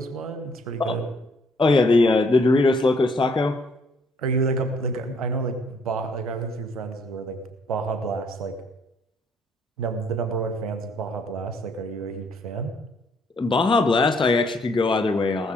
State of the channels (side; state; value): both; normal; correlation 0.67